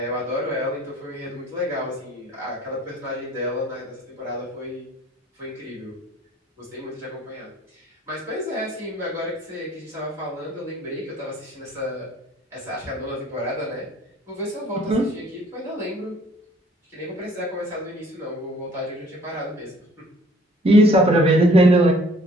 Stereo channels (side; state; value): both; normal; correlation 0.56